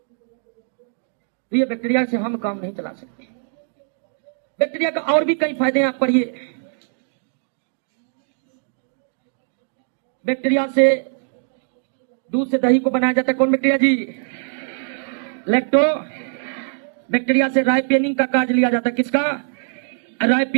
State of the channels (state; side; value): silent; left; digital silence